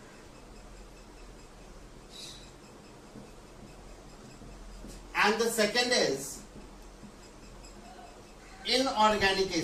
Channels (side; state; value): both; identical; correlation 1.00